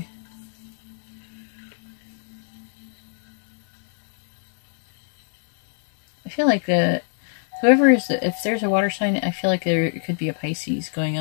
I feel like whoever is, if there's a water sign, I feel like there could be a Pisces going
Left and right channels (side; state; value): right; silent; digital silence